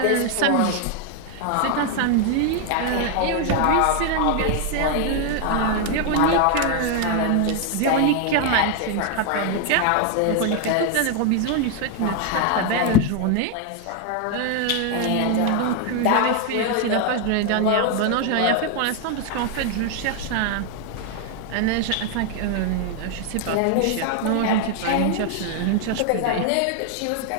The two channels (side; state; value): both; different; correlation 0.00